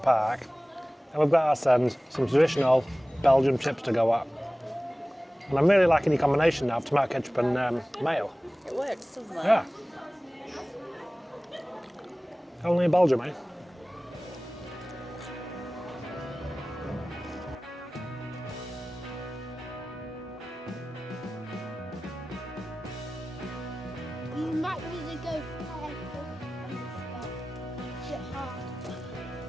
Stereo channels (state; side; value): normal; both; correlation 0.97